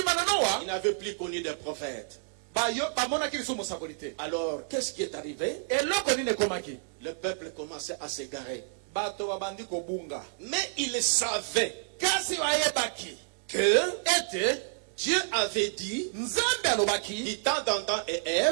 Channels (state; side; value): silent; left; 57 dB below the other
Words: il n'avait plus connu de prophète. Alors qu'est-ce qui est arrivé? Le peuple commençait à s'égarer. Mais il savait que Dieu avait dit, du temps d'Adam et